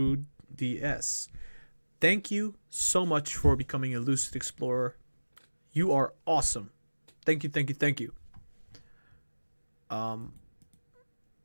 DS. Thank you so much for becoming a Lucid Explorer. You are awesome. Thank you, thank you, thank you. I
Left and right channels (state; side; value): inverted; both; correlation -1.00